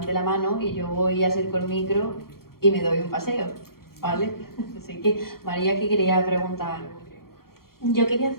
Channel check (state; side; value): late; right; 0.93 ms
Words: la mano y yo voy a acerco el micro y me doy un paseo, ¿vale? Así que, María, que quería preguntar algo. Yo quería